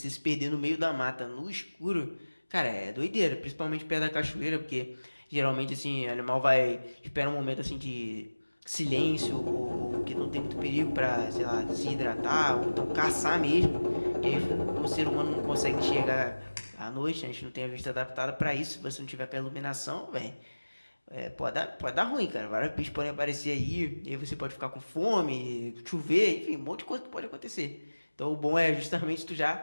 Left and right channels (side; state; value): both; inverted; correlation -1.00